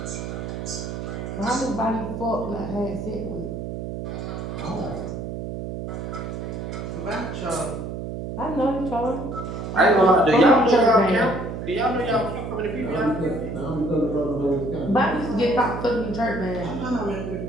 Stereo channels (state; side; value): noise; right; hum, 6 dB below the sound